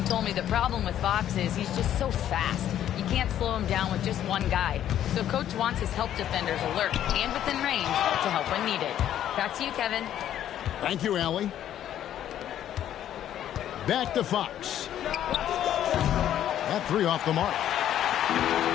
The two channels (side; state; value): right; quieter; 11.1 dB